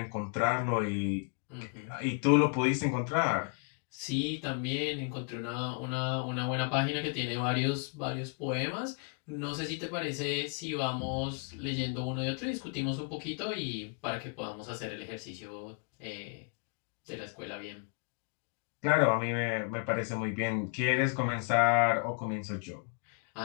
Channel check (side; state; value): right; quieter; 39.5 dB